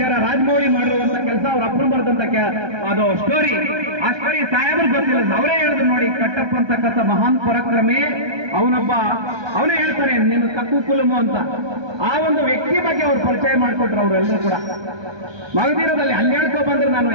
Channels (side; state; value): left; late; 1.2 ms